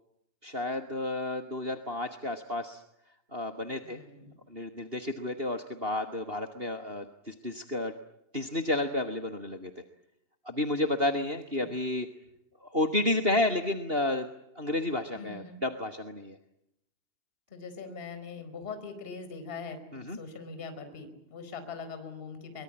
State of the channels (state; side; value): late; left; 2.8 ms